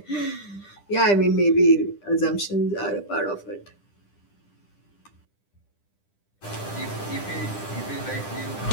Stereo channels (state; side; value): late; right; 10 ms